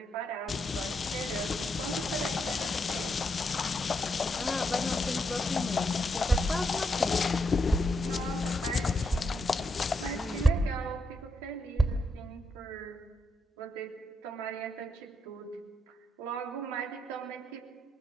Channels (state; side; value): normal; both; correlation 0.81